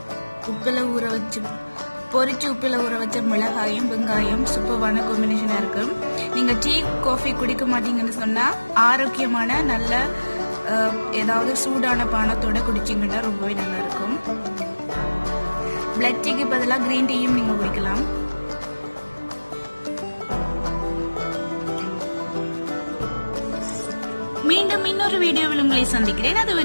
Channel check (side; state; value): both; inverted; correlation -1.00